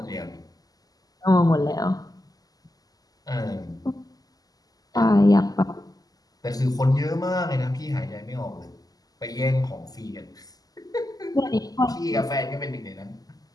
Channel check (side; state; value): right; late; 0.18 ms